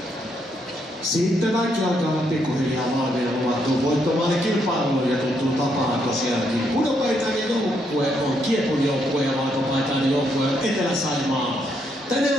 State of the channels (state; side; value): normal; both; correlation 0.76